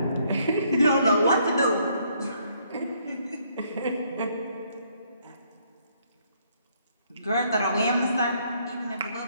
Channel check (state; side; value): inverted; both; correlation -0.69